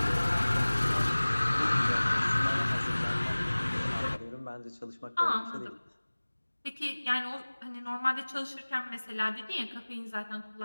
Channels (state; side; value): inverted; both; correlation -1.00